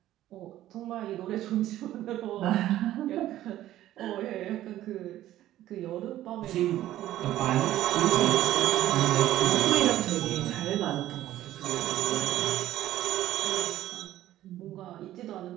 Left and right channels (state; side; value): quieter; left; 13.8 dB